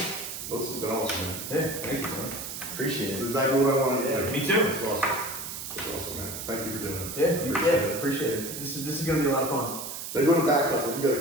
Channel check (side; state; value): right; noise; hiss, 7 dB below the sound